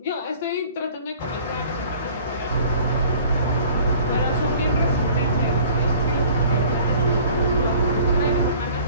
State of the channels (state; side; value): inverted; both; correlation -0.50